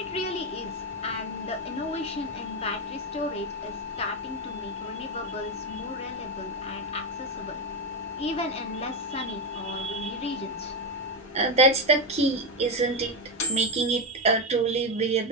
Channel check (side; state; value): both; normal; correlation 0.08